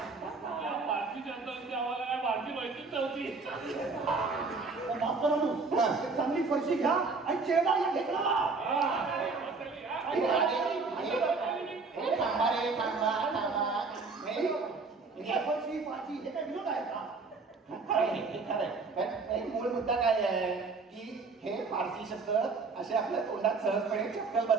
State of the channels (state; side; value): quieter; left; 4.2 dB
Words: या पारशी जनतांची आम्हाला काय भारती माहितीच नव्हती. मास्तर एक चांगली फरशी घ्या आणि चेहरा या ढेकळा. थांबा रे थांबा. फरशी फारशी हे काय विनोद आहे का? खरंय. पण एक मूळ मुद्दा काय आहे की हे फारसी शब्द असे आपल्या तोंडात सहजपणे चपकल